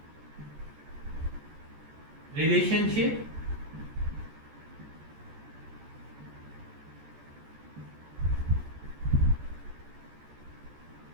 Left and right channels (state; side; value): late; left; 14 ms